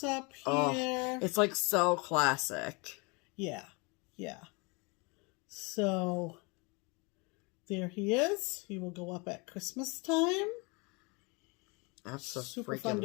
here. Oh, it's like so classic. Yeah. So there he is. He will go up at Christmas time. That's so super freaking fun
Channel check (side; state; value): right; quieter; 29.2 dB